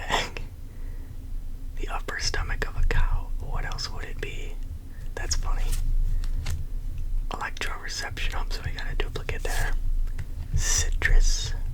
The upper stomach of a cow. What else would it be? That's funny. Electroreception. Oh, so we got a duplicate there. Citrus.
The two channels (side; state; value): both; identical; correlation 1.00